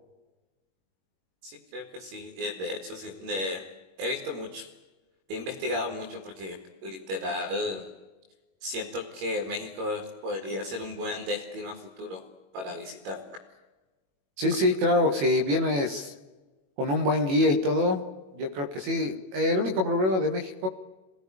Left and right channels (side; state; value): left; late; 21 ms